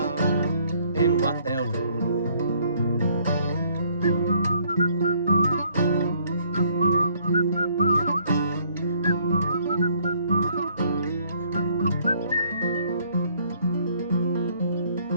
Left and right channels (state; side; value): inverted; both; correlation -0.64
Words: and what they'll do.